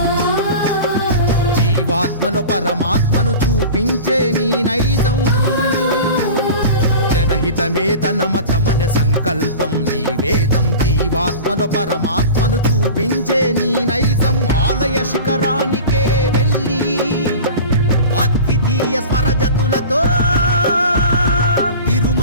జీవాత్మలో పరమాత్మను చూపించే నీ నైజం. జనహితమే తన మతమన సంకల్పం నీ వేదం, జీవాత్మలో పరమాత్మను చూపించే నీ నైజం. ఆలయ శిఖరానికే వెళ్ళి అద్వితీయ స్వరజతులతో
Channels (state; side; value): inverted; both; correlation -0.35